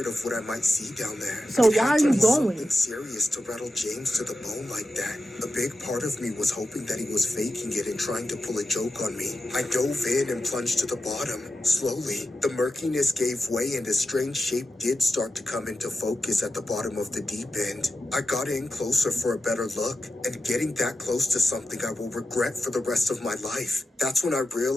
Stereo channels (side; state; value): both; normal; correlation 0.91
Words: of what I might see down there. So It why had are to you be going? something serious to rattle James to the bone like that. A big part of me was hoping that he was faking it and trying to pull a joke on me. I dove in and plunged to the bottom. Slowly, the murkiness gave way and a strange shape did start to come into focus at the bottom of the deep end. I got in closer for a better look, and getting that close to something I will regret for the rest of my life. That's when I